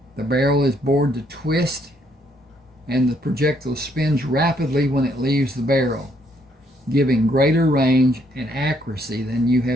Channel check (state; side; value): normal; both; correlation 0.70